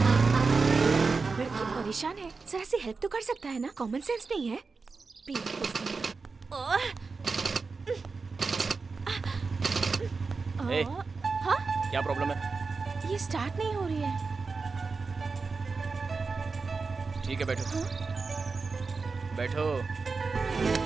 लड़की परेशान है, जरा सी हेल्प तो कर सकता है ना? कॉमन सेंस नहीं है? ए, हाँ? क्या प्रॉब्लम है? ये स्टार्ट नहीं हो रही है। ठीक है, बैठो। बैठो।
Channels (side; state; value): left; quieter; 4.4 dB